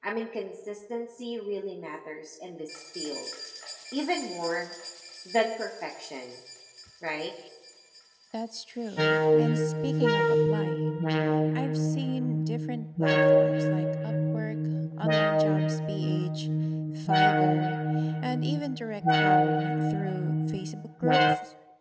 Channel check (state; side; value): identical; both; correlation 1.00